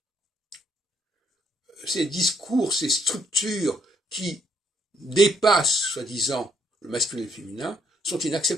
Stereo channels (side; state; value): both; normal; correlation 0.70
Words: Ces discours, ces structures qui dépassent, soi-disant, le masculin et le féminin, sont